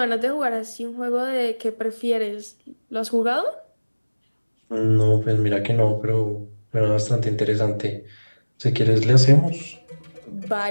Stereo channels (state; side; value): inverted; both; correlation -1.00